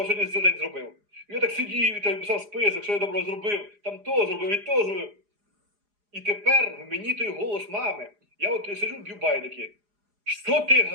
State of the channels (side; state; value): left; late; 4.9 ms